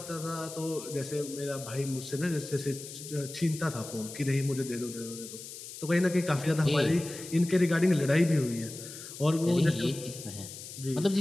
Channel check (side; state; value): left; noise; hiss, 12 dB below the sound